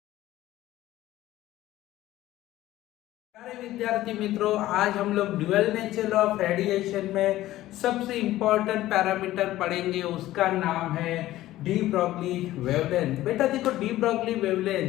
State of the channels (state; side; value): quieter; right; 15.3 dB